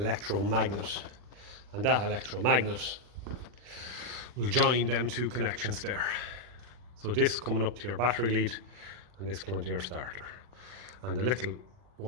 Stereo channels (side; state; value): left; late; 40 ms